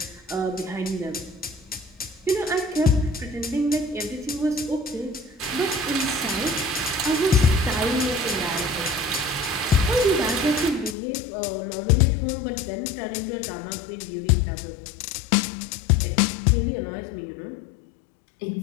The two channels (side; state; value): right; drops out; at 11.0 s